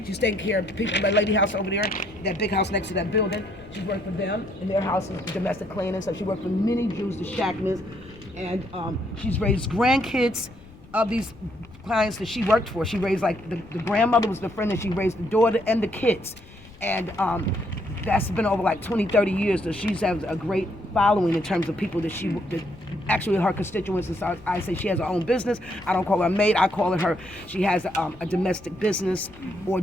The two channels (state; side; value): noise; left; rumble, 22 dB below the sound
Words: she's taking care of the people in that lady house over there, that big house next to that building. She's worked for them, and their house is domestic cleaning. So she worked for many Jews, the Shackmans, and she's raised grandkids of these clients that she worked for. She raised, like, the grandmother was the friend, and she raised the daughter and the kids. And that's been over like 20, 30 years. So she's has a great following in terms of people that actually her constituents. And so I say she has her own business. I don't call her a maid. I call her, she has a domestic business or